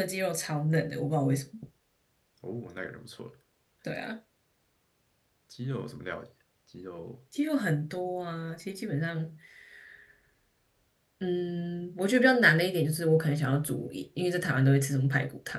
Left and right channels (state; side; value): identical; both; correlation 1.00